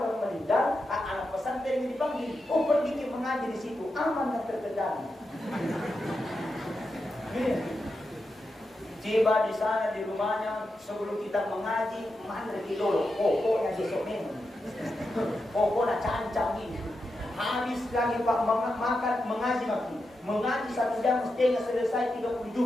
meninggal, anak pesantren yang dipanggil, pergi ke mengaji di situ, aman dan terkendali. Tiba di sana di rumahnya sebelum kita mengaji, mana dulu, pokoknya besok memang, pokoknya cancang ini. Habis lagi Pak makan mengaji makin. Mengaji 1 jam setengah selesai 30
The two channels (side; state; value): both; normal; correlation 0.88